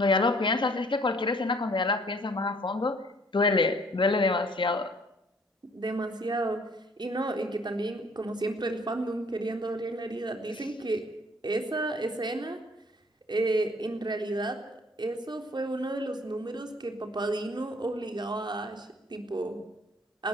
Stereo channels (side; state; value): both; normal; correlation 0.59